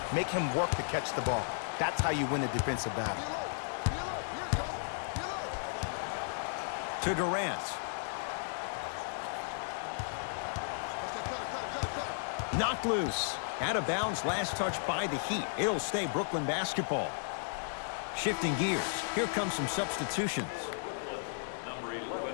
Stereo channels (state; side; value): silent; right; digital silence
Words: Make him work to catch the ball. That's how you win a defensive battle. To Durant. Knocked loose. Out of bounds, last touch by the Heat. It'll stay Brooklyn basketball. Shifting gears. Here comes some substitutions. Number 11,